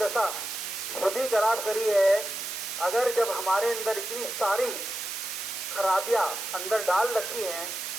खुद ही खराब करी है। अगर जब हमारे अंदर इतनी सारी खराबियां अंदर डाल रखी हैं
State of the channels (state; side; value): noise; right; hiss, 5 dB below the sound